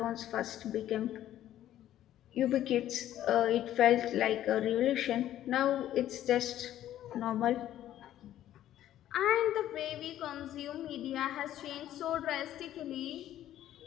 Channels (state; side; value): quieter; right; 12.4 dB